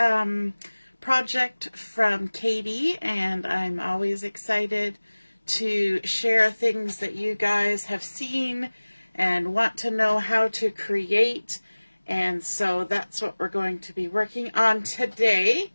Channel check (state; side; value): inverted; both; correlation -1.00